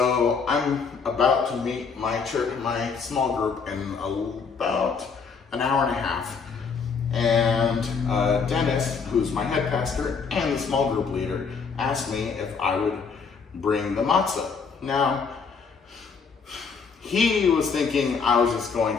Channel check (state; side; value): quieter; right; 5.5 dB